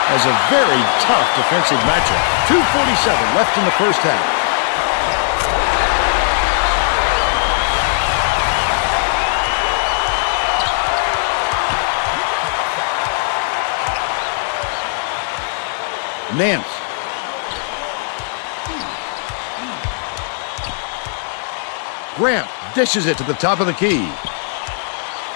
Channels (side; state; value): right; silent; digital silence